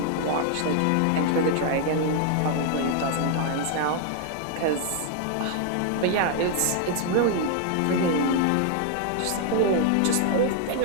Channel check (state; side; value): different; both; correlation 0.00